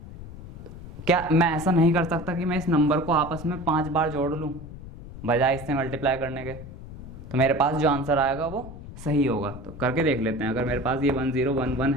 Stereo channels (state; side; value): noise; left; rumble, 13 dB below the sound